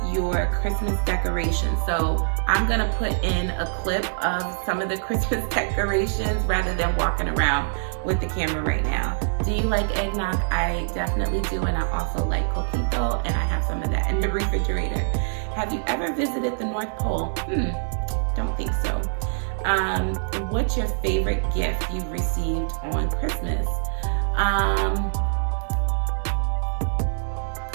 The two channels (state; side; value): silent; left; digital silence